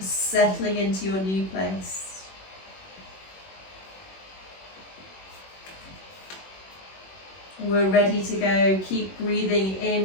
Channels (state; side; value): late; right; 21 ms